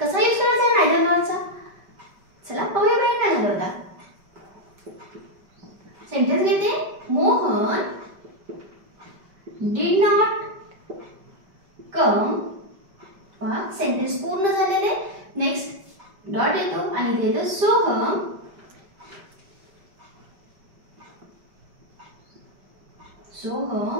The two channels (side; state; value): left; late; 5.2 ms